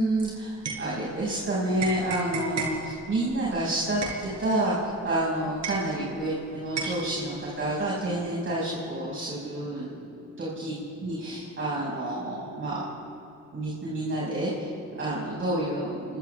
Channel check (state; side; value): normal; both; correlation 0.24